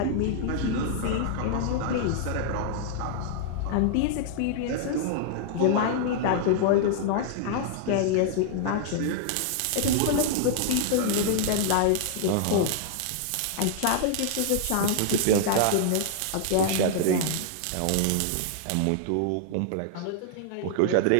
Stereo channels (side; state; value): both; different; correlation -0.01